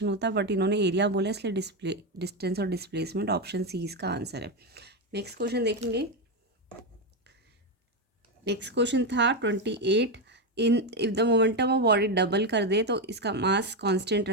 होता, बट इन्होंने एरिया बोला इसलिए डिस्टेंस और डिस्प्लेसमेंट, ऑप्शन सी इसका आंसर है। नेक्स्ट क्वेश्चन देखेंगे। नेक्स्ट क्वेश्चन था 28। If the momentum of body double कर दे तो इसका मास कांस्टेंट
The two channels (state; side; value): normal; both; correlation 0.09